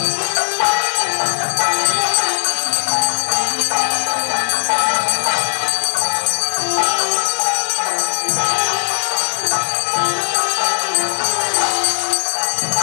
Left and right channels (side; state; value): right; silent; digital silence